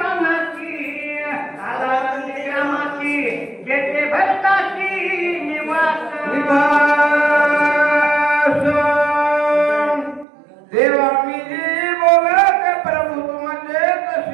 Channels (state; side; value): drops out; left; at 10.2 s